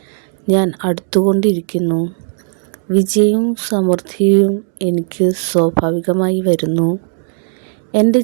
ഞാൻ അടുത്തുകൊണ്ടിരിക്കുന്നു. വിജയവും സമൃദ്ധിയും എനിക്ക് സ്വാഭാവികമായി വരുന്നു. എൻ്റെ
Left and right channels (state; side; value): silent; left; 63 dB below the other